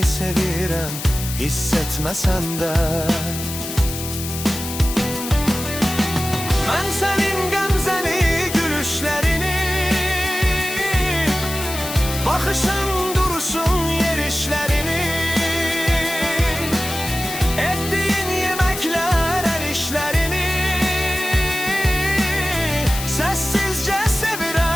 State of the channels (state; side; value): noise; left; hiss, 8 dB below the sound